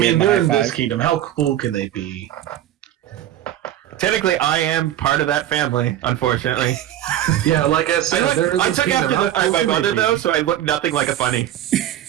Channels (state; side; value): quieter; left; 12.2 dB